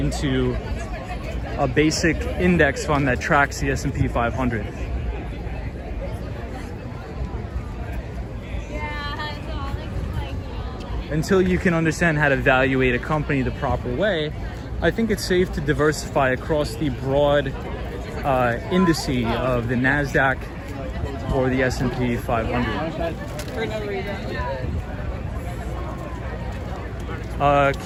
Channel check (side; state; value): both; identical; correlation 1.00